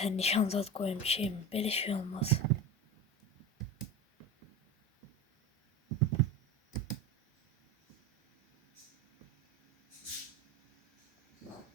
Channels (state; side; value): normal; both; correlation 0.28